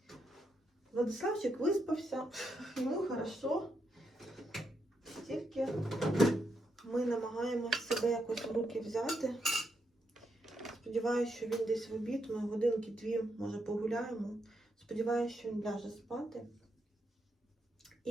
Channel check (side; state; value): both; normal; correlation 0.81